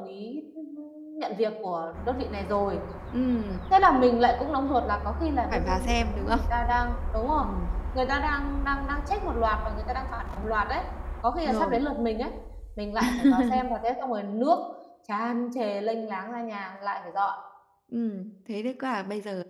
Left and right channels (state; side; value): identical; both; correlation 1.00